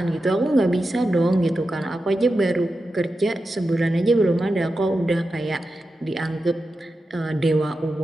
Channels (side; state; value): both; normal; correlation 0.91